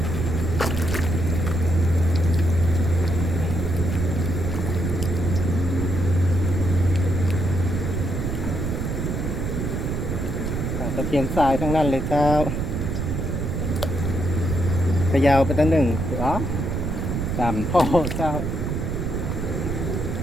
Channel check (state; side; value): noise; right; rumble, 1 dB below the sound